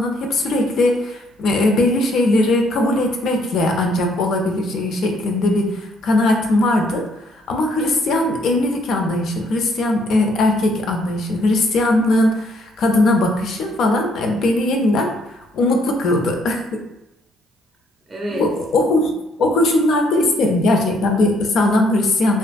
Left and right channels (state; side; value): normal; both; correlation 0.68